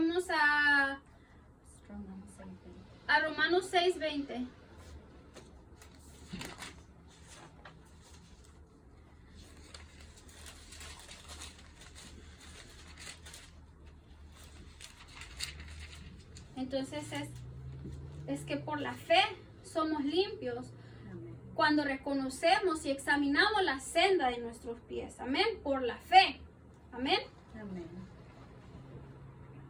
a Romanos 6:20. Entonces es que por la fe somos limpios cuando reconocemos y examinamos la senda de nuestros pies. Amén. Por la fe. Amén. Amén.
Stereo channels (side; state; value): both; identical; correlation 1.00